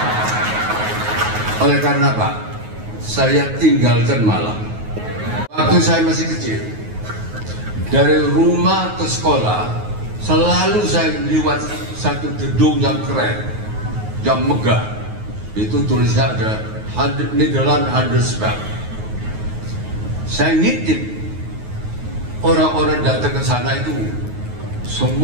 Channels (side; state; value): left; late; 9.4 ms